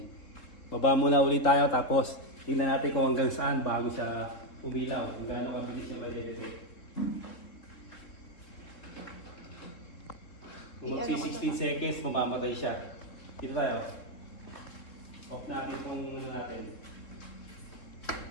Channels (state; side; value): late; right; 3.7 ms